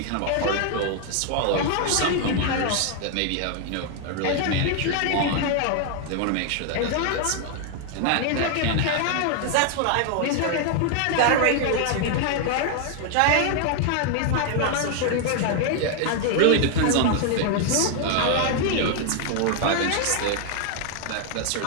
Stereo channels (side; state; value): both; different; correlation 0.00